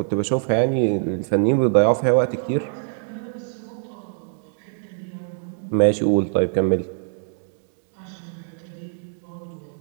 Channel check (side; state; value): left; silent; digital silence